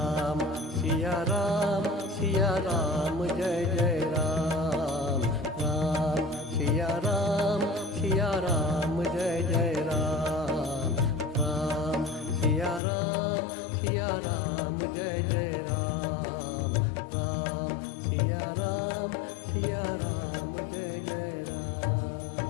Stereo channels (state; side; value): drops out; right; at 12.8 s